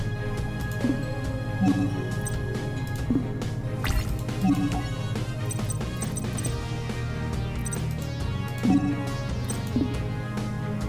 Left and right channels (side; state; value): both; identical; correlation 1.00